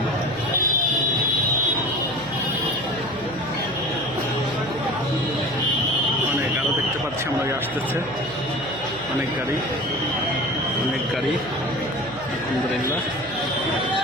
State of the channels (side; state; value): right; noise; hum, 17 dB below the sound